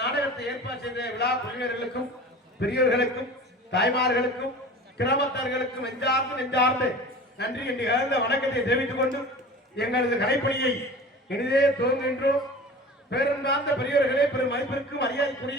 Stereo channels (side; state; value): both; normal; correlation 0.38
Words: நாடகத்தை ஏற்பாடு செய்த விழா குழுவினர்களுக்கும் பெரியவர்களுக்கும் தாய்மார்களுக்கும் கிராமத்தார்களுக்கும் நெஞ்சார்ந்து நன்றி என்று கலந்த வணக்கத்தை தெரிவித்துக் கொண்டு எங்களது கலைப்பணியை இனிதே துவங்குகின்றோம். பேருந்தார்ந்த பெரியவர்களே, பெரும் மதிப்பிற்கும்